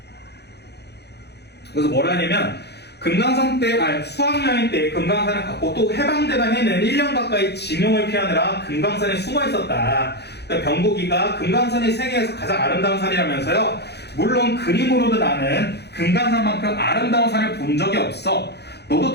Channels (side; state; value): right; late; 0.48 ms